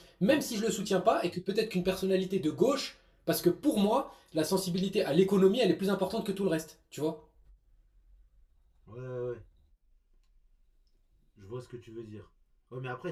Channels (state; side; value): identical; both; correlation 1.00